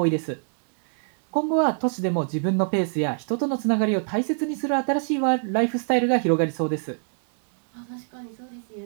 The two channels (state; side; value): silent; left; 62 dB below the other